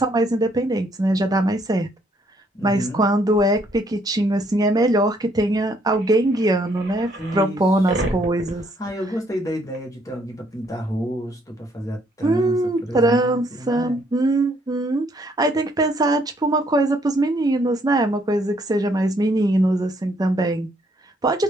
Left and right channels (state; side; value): normal; both; correlation 0.68